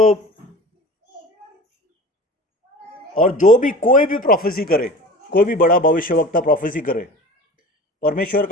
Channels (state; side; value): normal; both; correlation 0.38